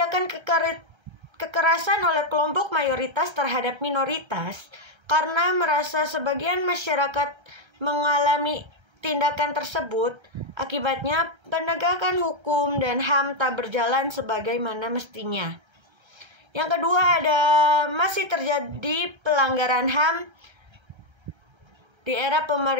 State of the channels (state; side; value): late; left; 1.3 ms